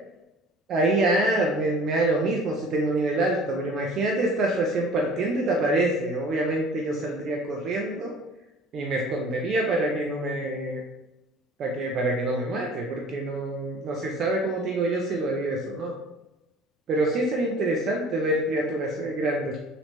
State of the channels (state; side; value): normal; both; correlation 0.47